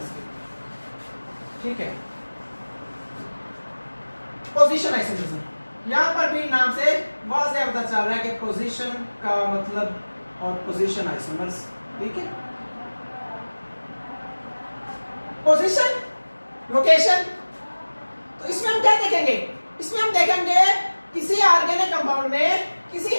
के। ठीक है, पोजीशन आइसोमरिज्म, यहां पर भी नाम से वाज़ेह पता चल रहा है कि पोजीशन का मतलब और पोजीशन आइसोमर्स। ठीक है, पोजीशन, लोकेशन, तो इसमें हम क्या देखेंगे? इसमें हम देखेंगे किसी ऑर्गेनिक कंपाउंड में,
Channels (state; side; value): inverted; both; correlation -1.00